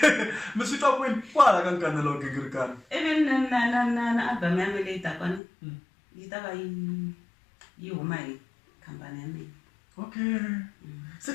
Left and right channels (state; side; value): drops out; right; at 5.4 s